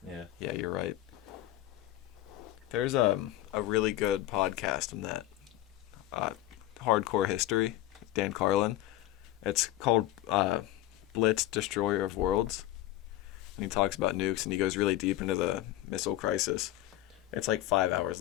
Yeah. Yeah, you're right. There's a really good podcast on that. Hardcore History, Dan Carlin. It's called Blitz, Destroyer of Worlds. And he talks about nukes, and he goes really deep into the missile crisis. It's like 5 hours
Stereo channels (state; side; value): quieter; right; 14.8 dB